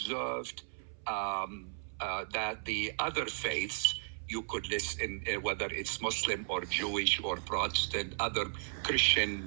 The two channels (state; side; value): silent; left; 54 dB below the other